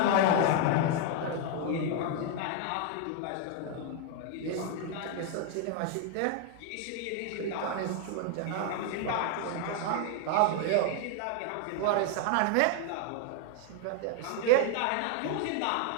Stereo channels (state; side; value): different; both; correlation 0.00